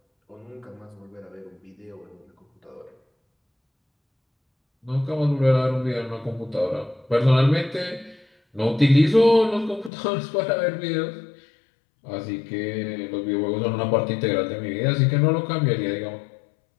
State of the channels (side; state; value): right; drops out; at 9.9 s